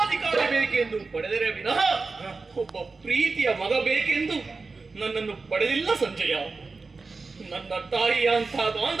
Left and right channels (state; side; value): quieter; left; 4.1 dB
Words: ಬೇಕೆಂದು ಪಡೆದರೆ ವಿನಃ ಒಬ್ಬ ಪ್ರೀತಿಯ ಮಗ ಬೇಕೆಂದು ನನ್ನನ್ನು ಪಡೆದಿಲ್ಲ ಸಂಜಯ. ನನ್ನ ತಾಯಿಯಂಥ